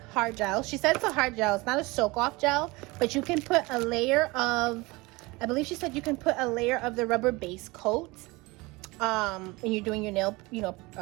hard gel. She said it's a hard gel. It's not a soak off gel, but you can put a layer of, I believe she said you can put a layer of the rubber base coat when you're doing your nail,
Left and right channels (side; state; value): left; quieter; 23.4 dB